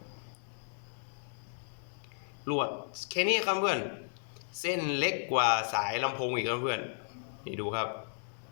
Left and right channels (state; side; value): silent; right; digital silence